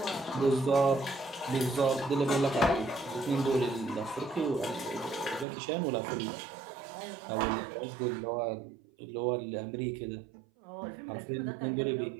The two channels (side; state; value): left; drops out; at 5.5 s